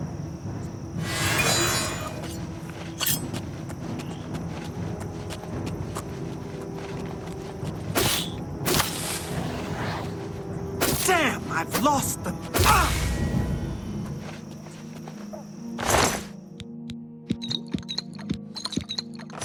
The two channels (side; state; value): both; identical; correlation 1.00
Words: Damn, I've lost them. Ah!